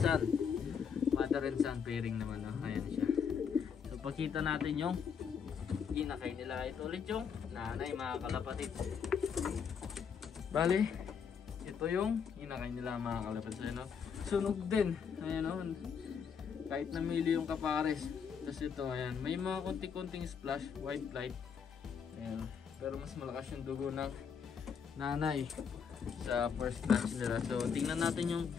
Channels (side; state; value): right; quieter; 6.8 dB